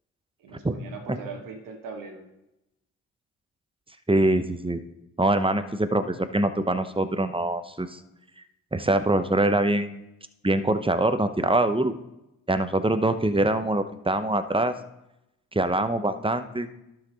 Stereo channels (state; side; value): normal; both; correlation 0.56